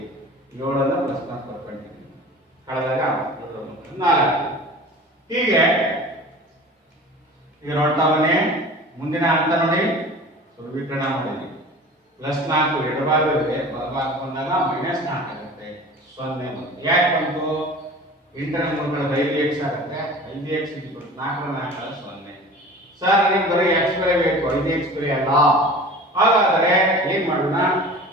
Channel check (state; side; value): normal; both; correlation 0.40